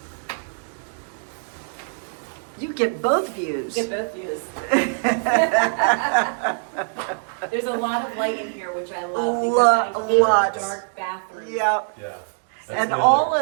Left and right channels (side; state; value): left; silent; digital silence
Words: you get both views. Get both views. There's a lot of light in here, which I love because I hate Lots. dark bathrooms. Yep. Yeah. And all